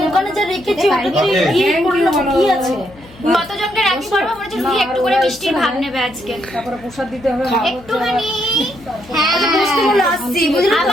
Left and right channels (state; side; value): noise; left; hum, 22 dB below the sound